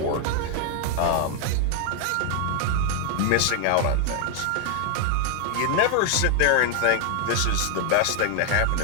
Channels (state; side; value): different; both; correlation 0.00